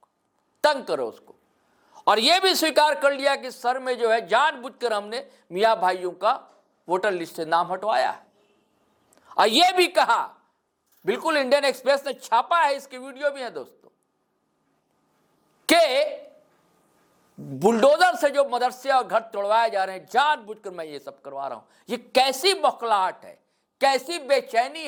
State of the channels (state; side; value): identical; both; correlation 1.00